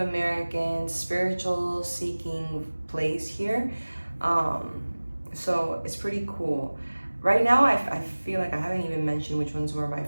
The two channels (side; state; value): both; inverted; correlation -1.00